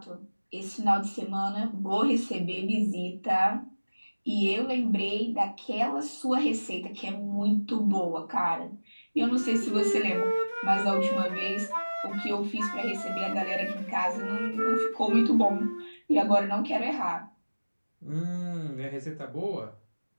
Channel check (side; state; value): both; inverted; correlation -1.00